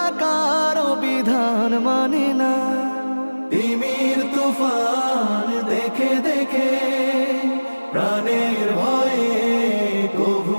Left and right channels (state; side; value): inverted; both; correlation -1.00